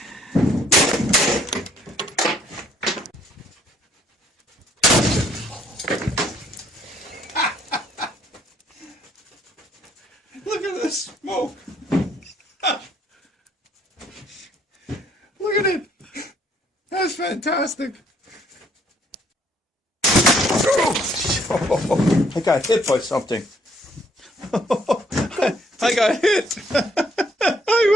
Look at this smoke. Look at it. That's fantastic. Oh, I got hit by something. I got hit.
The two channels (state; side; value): normal; both; correlation 0.65